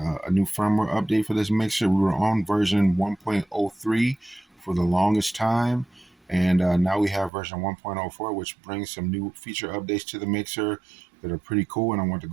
new firmware update for this mixer. We were on version 1.03 for the longest time, and now we have version 1.04, which brings some new feature updates to the mixer that are pretty cool, and I want to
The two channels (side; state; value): left; drops out; at 7.3 s